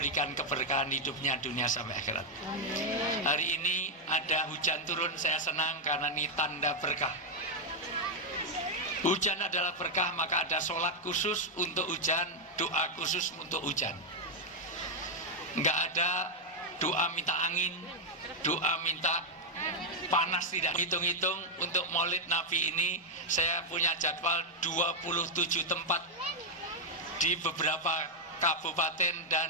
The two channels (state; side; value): normal; both; correlation 0.01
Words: keberkahan hidupnya dunia sampai akhirat. Hari ini ada hujan turun, saya senang karena ini tanda berkah. Hujan adalah berkah, maka ada sholat khusus untuk hujan, doa khusus untuk hujan. Enggak ada doa minta angin, doa minta panas, tidak. Hitung-hitung untuk Maulid Nabi ini saya punya jadwal 27 tempat di beberapa kabupaten